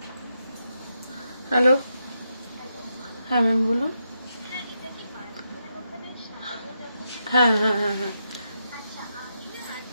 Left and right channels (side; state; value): both; inverted; correlation -0.83